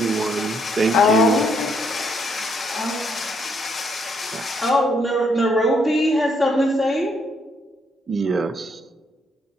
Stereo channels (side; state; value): both; normal; correlation 0.72